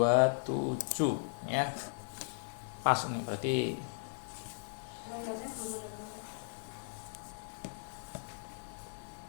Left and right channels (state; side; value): silent; right; digital silence